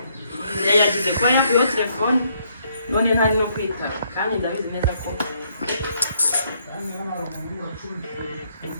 yagize ko yo kuyo telefone none ntari no kwitaba kandi ndabizi neza ko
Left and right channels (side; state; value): both; inverted; correlation -0.71